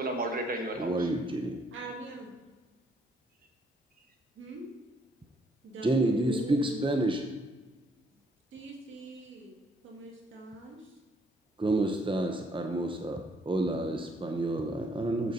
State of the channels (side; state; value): both; normal; correlation 0.68